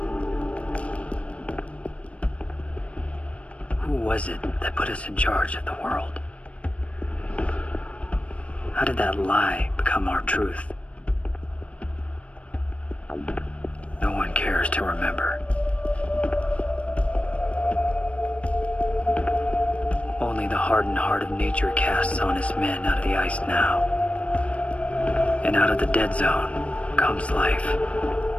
Who was it that put us in charge of the world? How did that lie become our truth? No one cares to remember. Only the hardened heart of nature casts honest men out of the ice now. And out of the dead zone comes life.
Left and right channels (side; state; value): right; late; 0.063 ms